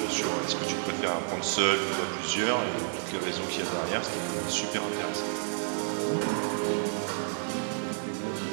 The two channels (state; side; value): silent; left; digital silence